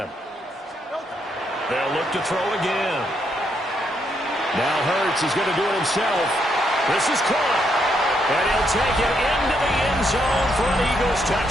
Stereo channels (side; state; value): both; normal; correlation 0.76